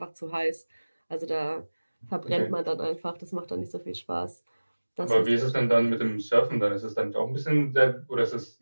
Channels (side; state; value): both; inverted; correlation -1.00